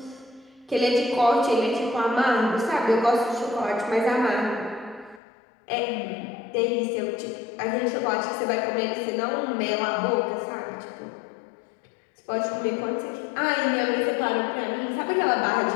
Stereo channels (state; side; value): drops out; right; at 5.2 s